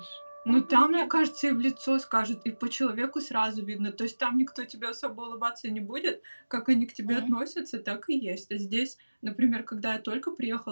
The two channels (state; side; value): inverted; both; correlation -1.00